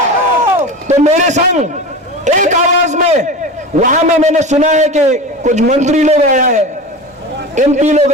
तो मेरे संग एक आवाज में वहां में मैंने सुना है कि कुछ मंत्री लोग आया है, एमपी लोग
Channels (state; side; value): normal; both; correlation 0.29